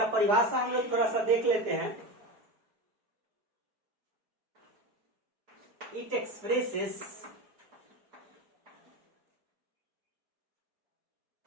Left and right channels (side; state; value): left; late; 4.7 ms